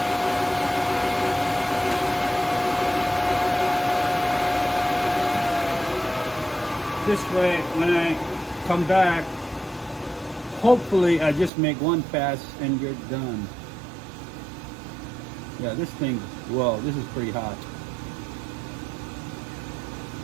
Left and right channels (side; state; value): left; drops out; at 11.5 s